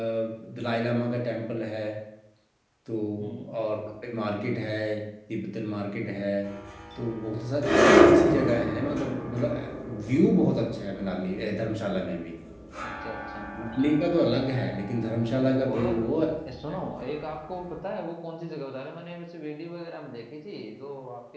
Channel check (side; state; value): both; identical; correlation 1.00